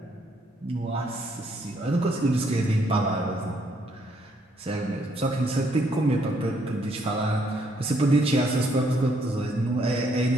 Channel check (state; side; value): normal; both; correlation 0.70